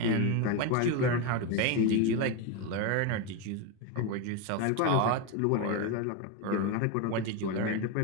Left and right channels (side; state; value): both; different; correlation 0.03